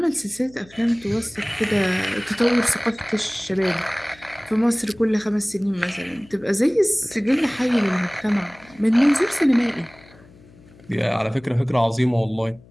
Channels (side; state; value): left; noise; hum, 25 dB below the sound